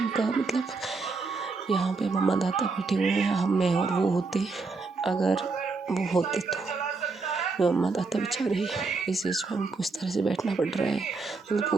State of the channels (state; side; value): quieter; left; 4.0 dB